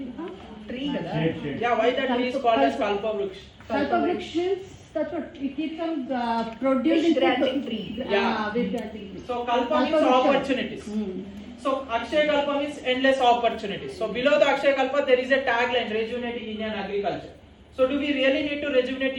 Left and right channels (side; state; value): both; identical; correlation 1.00